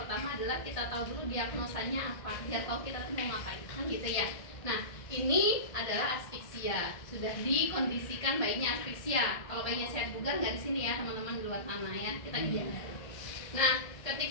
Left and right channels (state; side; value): late; right; 1.6 ms